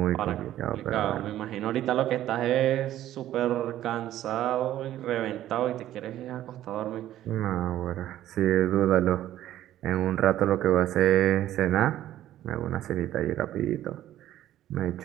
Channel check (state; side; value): quieter; left; 12.9 dB